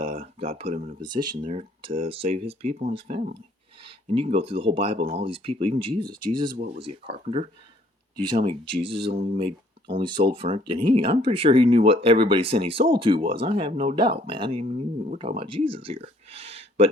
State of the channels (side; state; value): both; normal; correlation 0.61